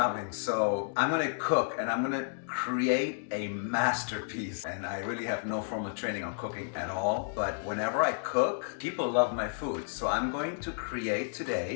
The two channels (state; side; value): silent; right; digital silence